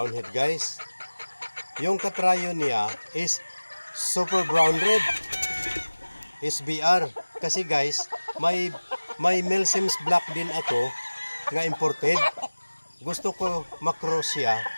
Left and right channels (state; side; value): inverted; both; correlation -1.00